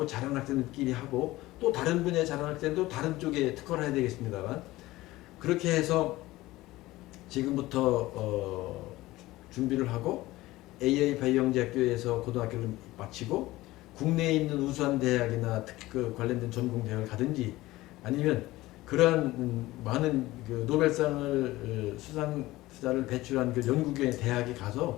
잘하는 학생들끼리 하고 또 다른 분야에 잘하는 학생도 다른 쪽에 특화를 해야 되겠습니다만 그렇게 해서 지금부터 준비를 하고 AI 바이오 영재 학교에서 고등학교를 마치고 국내에 있는 우수한 대학이나 관련된 전공 대학을 가든지 아니면 그러한 많은 그 노벨상을 수상자를 배출한 그 연구기관의 대학에 가서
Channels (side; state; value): right; quieter; 18.0 dB